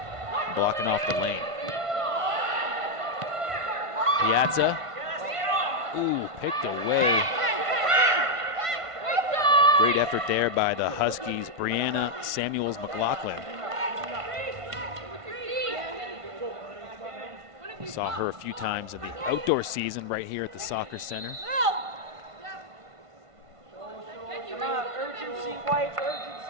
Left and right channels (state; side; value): late; left; 1.5 ms